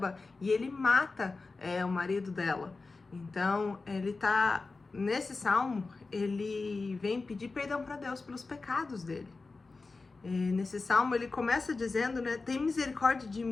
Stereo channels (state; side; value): quieter; right; 3.9 dB